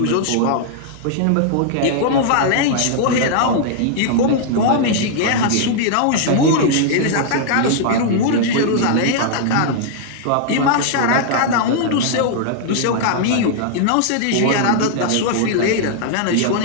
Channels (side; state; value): both; different; correlation -0.01